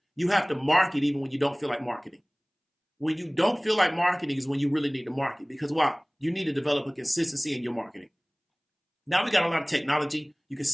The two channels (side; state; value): both; identical; correlation 1.00